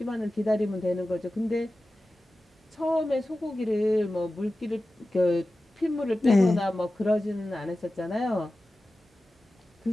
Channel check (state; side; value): normal; both; correlation 0.95